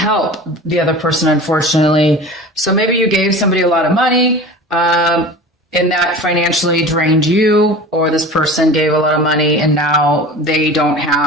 the other person, unfortunately. So maybe you gave somebody a lot of money, and that financially drained you, or this person gave a lot of money and now they don't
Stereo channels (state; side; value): normal; both; correlation 0.36